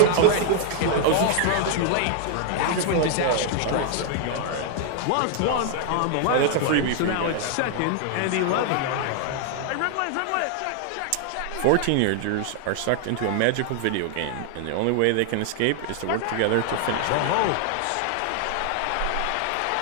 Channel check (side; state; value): both; different; correlation 0.00